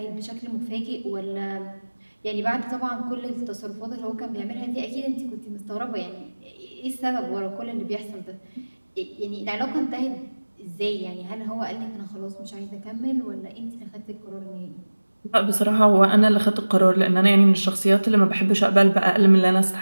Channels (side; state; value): both; inverted; correlation -1.00